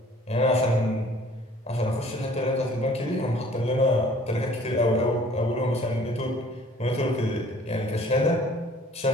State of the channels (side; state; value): both; normal; correlation 0.53